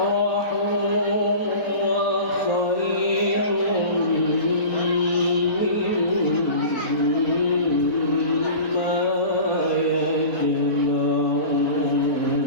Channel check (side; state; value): right; late; 4.0 ms